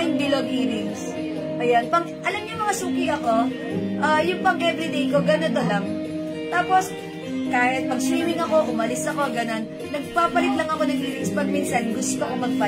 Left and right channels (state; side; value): identical; both; correlation 1.00